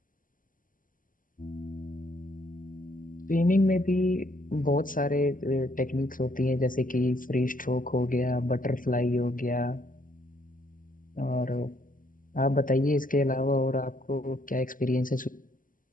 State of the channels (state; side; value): late; right; 0.39 ms